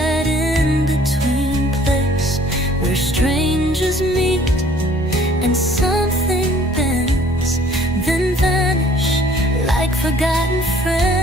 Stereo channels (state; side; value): normal; both; correlation 0.56